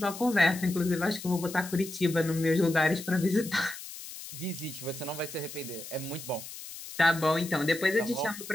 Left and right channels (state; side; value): noise; left; hiss, 12 dB below the sound